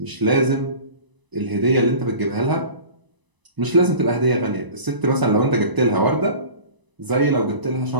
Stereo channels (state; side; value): late; left; 1.0 ms